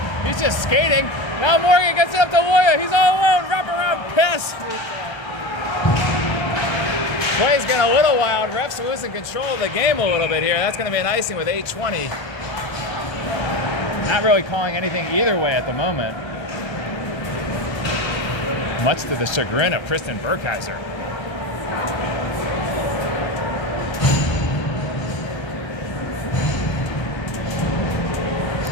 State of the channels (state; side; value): late; right; 1.3 ms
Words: just skating. Now Morgan gets it up to Loya. He's all alone. Wraparound pass. Play's getting a little wild. Refs losing control of the game a little bit here. That's going to be an icing with 8:20. Not really calling anything either way at the moment. Much to the chagrin of Kristen Burkheiser.